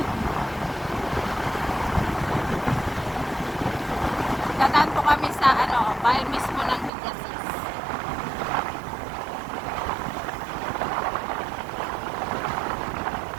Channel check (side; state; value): left; drops out; at 6.9 s